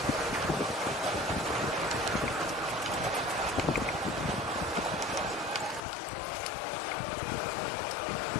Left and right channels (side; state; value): right; drops out; at 5.9 s